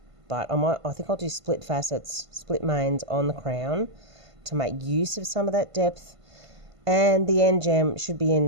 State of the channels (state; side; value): late; left; 1.5 ms